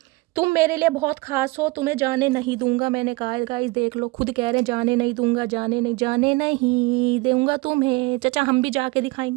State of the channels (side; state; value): left; quieter; 23.4 dB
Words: तुम मेरे लिए बहुत खास हो, तुम्हें जाने नहीं दूंगा। मैंने कहा गाइस देख लो, खुद कह रहे हैं जाने नहीं दूंगा, जाने नहीं दूंगा तुम्हें। चचा हम भी जाके